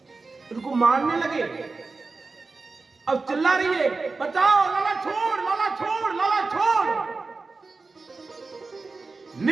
उनको मारने लगे। अब चिल्ला रही है, बचाओ, लाला छोड़, लाला छोड़, लाला छोड़।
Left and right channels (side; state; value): left; quieter; 4.0 dB